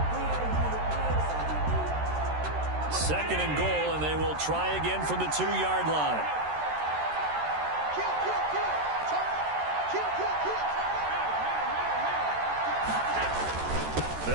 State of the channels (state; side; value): late; left; 13 ms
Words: Second and goal, and they will try again from the 2-yard line.